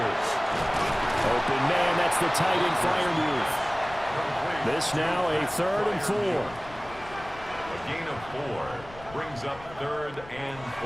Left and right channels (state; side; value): noise; left; rumble, 19 dB below the sound